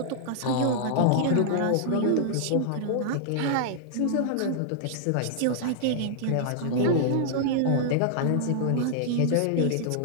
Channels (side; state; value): both; different; correlation -0.01